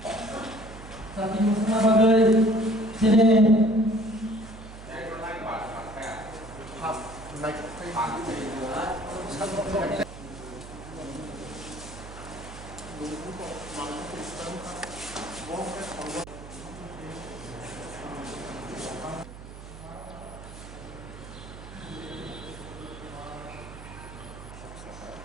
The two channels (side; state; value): right; noise; hum, 14 dB below the sound